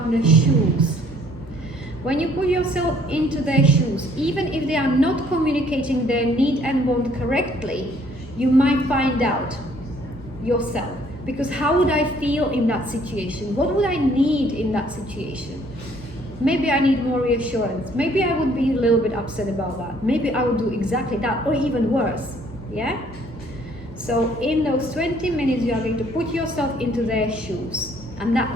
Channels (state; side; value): normal; both; correlation 0.61